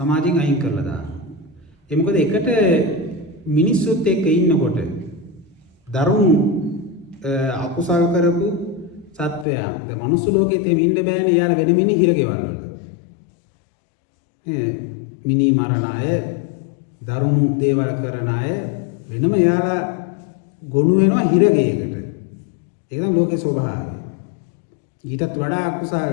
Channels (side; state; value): right; drops out; at 9.5 s